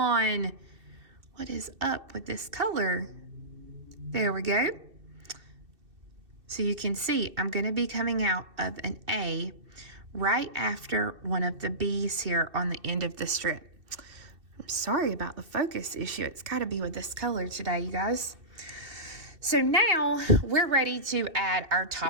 What is up with this color? There we go. So you can see I'm going to be coming out of an A right after one of the B's here on the end of the strip. I'm sorry about the focus issue. It's got to be with this color today, you guys. So now we're ready to add our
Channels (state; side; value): late; left; 2.6 ms